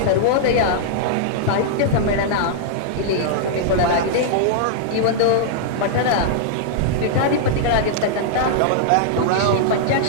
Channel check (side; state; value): both; different; correlation -0.02